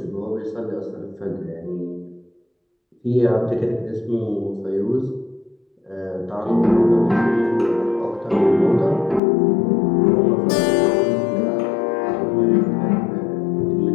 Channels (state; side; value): drops out; right; at 9.2 s